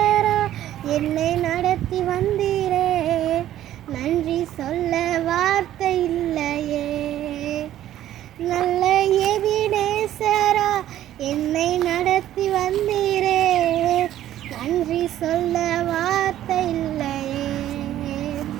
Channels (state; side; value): quieter; left; 12.6 dB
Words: என்னை நடத்தி வந்தீரே, நன்றி சொல்ல வார்த்தை இல்லையே. நல்ல எபினேசரா என்னை நடத்தி வந்தீரே, நன்றி சொல்ல வார்த்தை இல்லையே.